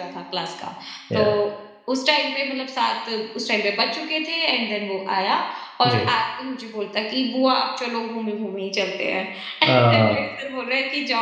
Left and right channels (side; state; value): both; identical; correlation 1.00